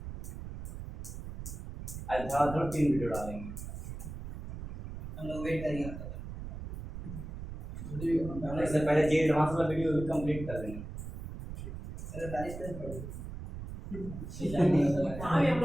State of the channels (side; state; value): right; noise; rumble, 9 dB below the sound